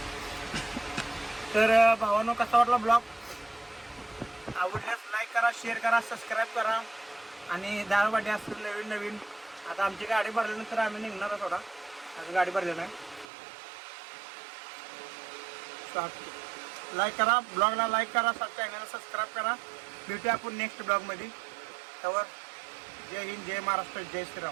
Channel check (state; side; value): drops out; left; at 13.2 s